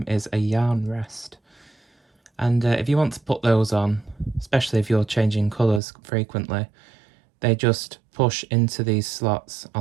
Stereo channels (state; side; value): drops out; left; at 5.8 s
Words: is a yarn rest. And if you want to put those on, especially if you're changing colours frequently, they just push into these slots